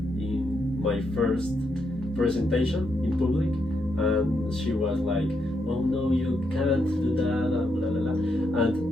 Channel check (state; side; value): normal; both; correlation 0.80